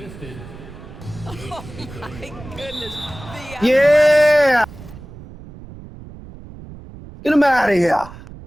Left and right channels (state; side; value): noise; right; rumble, 16 dB below the sound